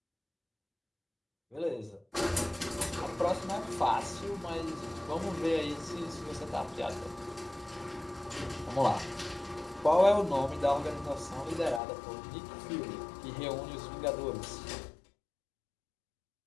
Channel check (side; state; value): right; drops out; at 11.8 s